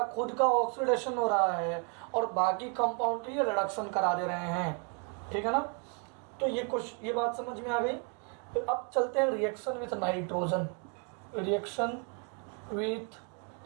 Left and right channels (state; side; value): quieter; left; 36.7 dB